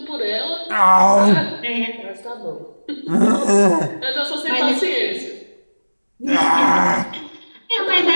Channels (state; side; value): inverted; both; correlation -1.00